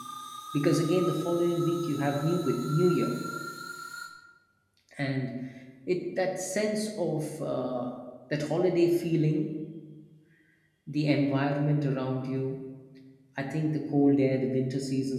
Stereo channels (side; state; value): both; identical; correlation 1.00